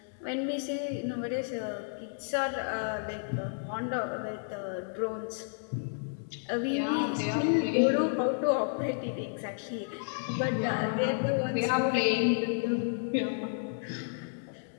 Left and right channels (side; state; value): right; silent; digital silence